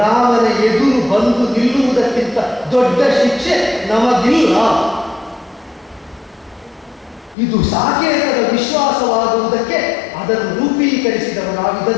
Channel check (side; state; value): right; drops out; at 7.4 s